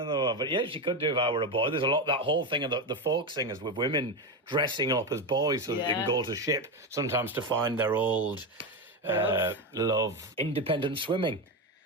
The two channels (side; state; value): both; normal; correlation 0.14